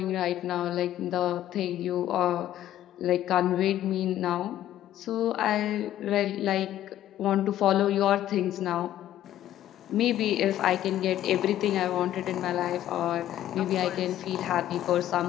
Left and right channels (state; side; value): quieter; right; 12.6 dB